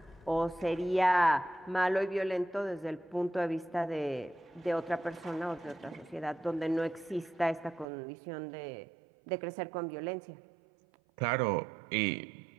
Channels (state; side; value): drops out; left; at 7.9 s